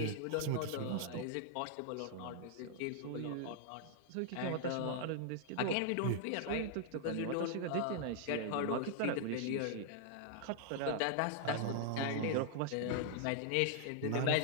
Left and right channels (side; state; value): both; different; correlation -0.01